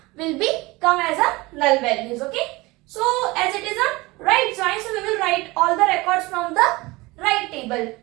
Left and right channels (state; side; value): quieter; left; 22.2 dB